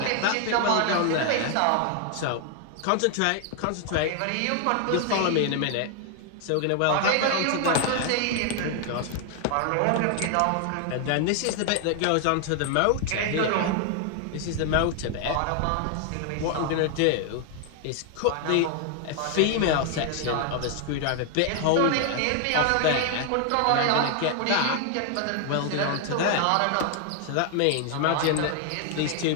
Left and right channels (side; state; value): both; different; correlation 0.00